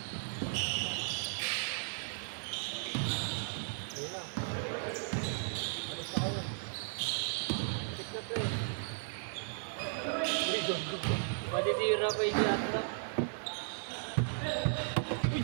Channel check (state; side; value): silent; left; digital silence